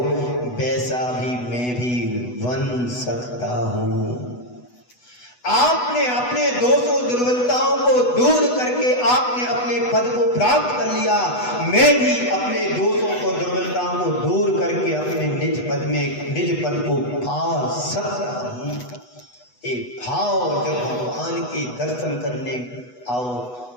वैसा भी मैं भी बन सकता हूं। आपने अपने दोषों दुर्बलताओं को दूर करके आपने अपने पद को प्राप्त कर लिया, मैं भी अपने दोषों को दुर्बलताओं को दूर करके अपने निज पद में निज पद को पा सकता हूं। एक भाव जब भगवान के दर्शन करने आओ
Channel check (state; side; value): late; right; 8.1 ms